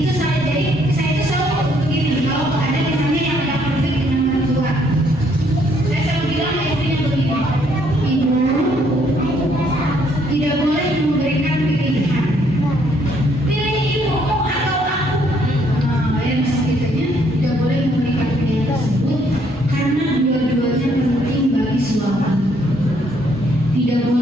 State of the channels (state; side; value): normal; both; correlation 0.68